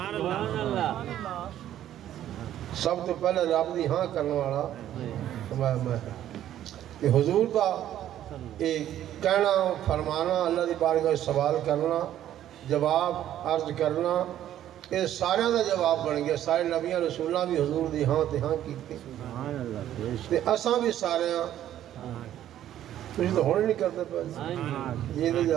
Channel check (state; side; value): quieter; left; 11.8 dB